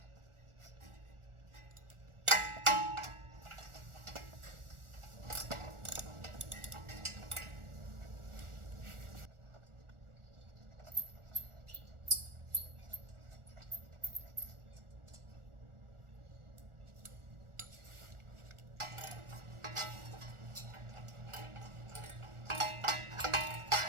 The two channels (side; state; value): left; late; 1.4 ms